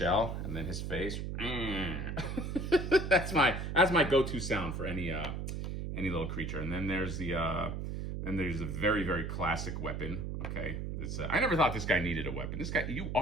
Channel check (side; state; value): right; noise; hum, 4 dB below the sound